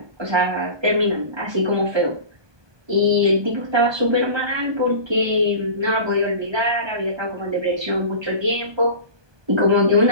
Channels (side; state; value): left; late; 1.2 ms